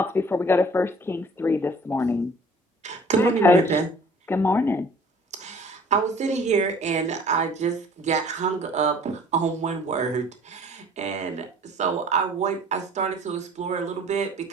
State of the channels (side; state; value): both; normal; correlation 0.51